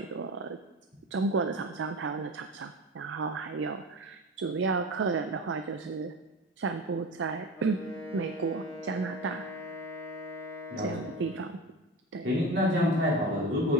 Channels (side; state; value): both; normal; correlation 0.29